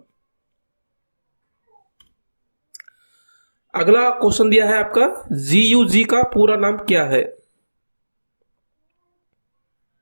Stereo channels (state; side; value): inverted; both; correlation -1.00